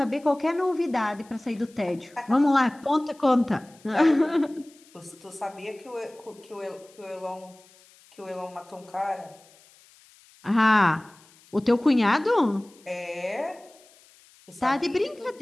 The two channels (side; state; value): left; noise; hiss, 27 dB below the sound